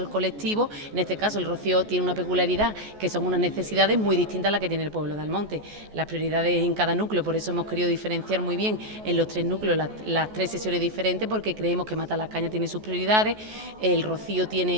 el colectivo. En este caso el Rocío tiene una peculiaridad, que son unas necesidades muy distintas a las que tiene el pueblo de Almonte. Las prioridades en cada núcleo, por eso hemos querido diferenciar muy bien en los 3 núcleos las 3 sesiones diferentes, porque creemos que Matalascañas tiene sus prioridades, el Rocío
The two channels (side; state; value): left; late; 14 ms